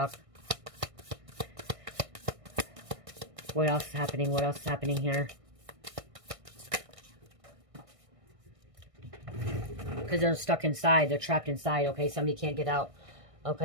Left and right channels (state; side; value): late; left; 1.6 ms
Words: What else is happening? What else is happening here? Because they're stuck inside. They're trapped inside, okay? Somebody can't get out,